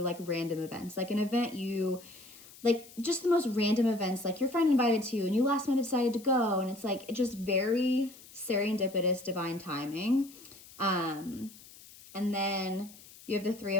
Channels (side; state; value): left; noise; hiss, 20 dB below the sound